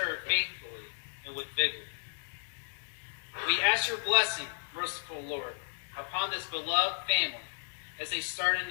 faithfully and with vigor. We ask your blessing, merciful Lord, upon this beloved family as they start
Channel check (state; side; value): silent; right; digital silence